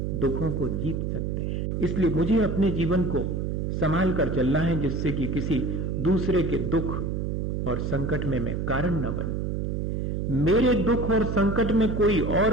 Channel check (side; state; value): right; noise; hum, 1 dB below the sound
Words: दुखों को जीत सकते हैं। इसलिए मुझे अपने जीवन को संभाल कर चलना है, जिससे कि किसी दूसरे के दुख और संकट में मैं कारण न बनूं। मेरे दुख और संकट में कोई